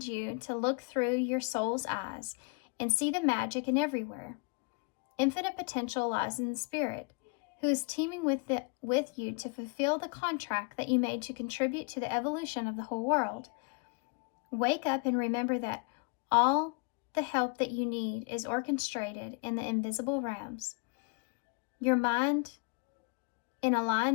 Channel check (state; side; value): quieter; right; 33.8 dB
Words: you to look through your soul's eyes and see the magic in everywhere. Infinite potential lies in the spirit, who is teaming with you to fulfill the contract that you made to contribute to the evolution of the whole world. Wake up and remember that all the help that you need is orchestrated in the invisible realms. Your mind, in